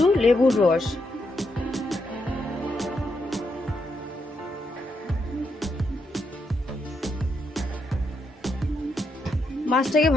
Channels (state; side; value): normal; both; correlation 0.80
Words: লেবুর রস, মাছটাকে